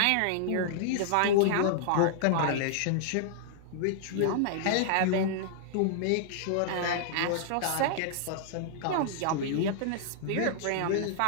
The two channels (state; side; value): different; both; correlation -0.01